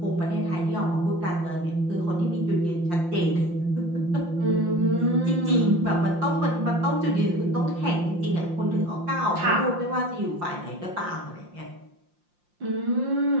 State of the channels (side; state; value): left; late; 5.7 ms